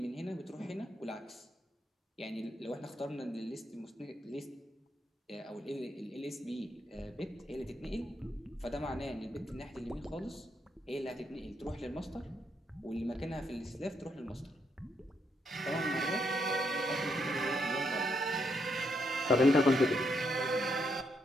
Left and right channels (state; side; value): normal; both; correlation 0.77